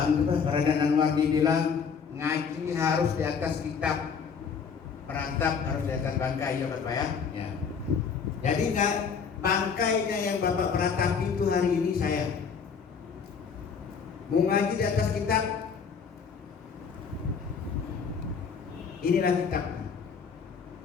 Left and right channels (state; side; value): quieter; right; 6.2 dB